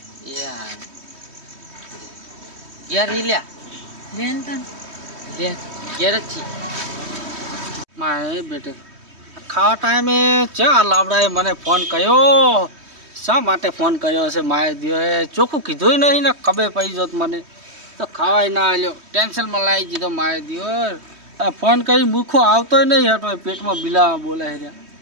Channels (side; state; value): left; late; 3.2 ms